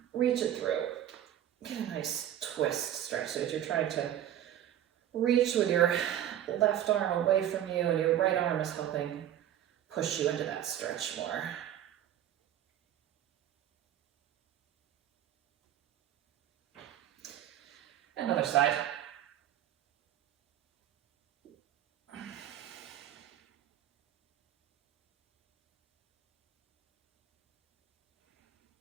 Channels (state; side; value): quieter; left; 11.3 dB